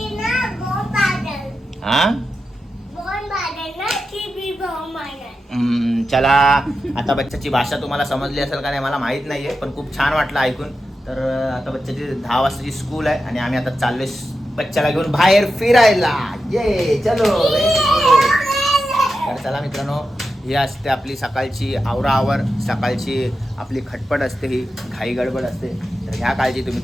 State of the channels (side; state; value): both; normal; correlation 0.90